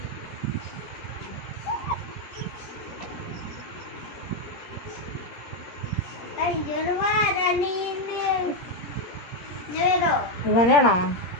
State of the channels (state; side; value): late; right; 17 ms